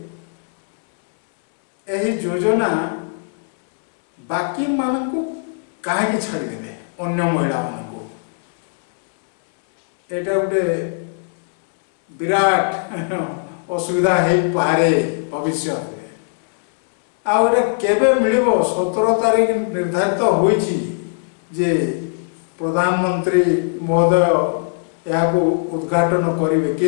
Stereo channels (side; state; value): right; silent; 66 dB below the other